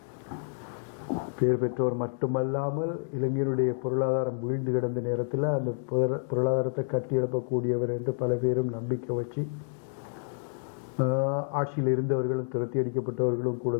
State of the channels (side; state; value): right; silent; digital silence